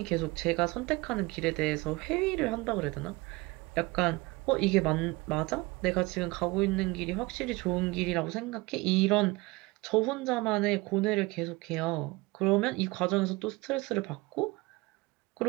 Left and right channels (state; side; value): quieter; left; 22.9 dB